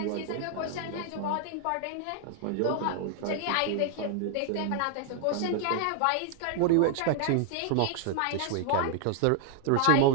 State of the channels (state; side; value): different; both; correlation 0.00